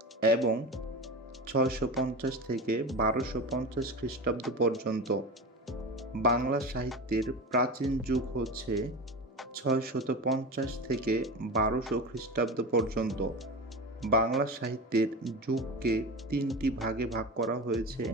এবং 650 থেকে 1250 খ্রিস্টাব্দ পর্যন্ত। বাংলা সাহিত্যের প্রাচীন যুগ হচ্ছে 650 থেকে 1200 খ্রিস্টাব্দ পর্যন্ত। বাংলা সাহিত্যের যুগকে 3টি ভাগে ভাগ করা হয়েছে,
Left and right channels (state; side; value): normal; both; correlation 0.27